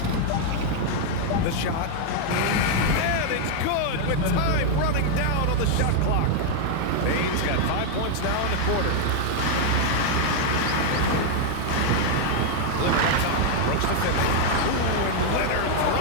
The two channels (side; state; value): both; different; correlation 0.00